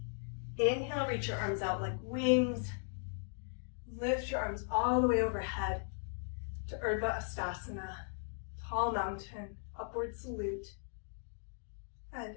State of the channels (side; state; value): right; silent; digital silence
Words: Inhale, reach your arms out like wings. Lift your arms all the way overhead to Urdhva Hastasana, tall mountain, upward salute.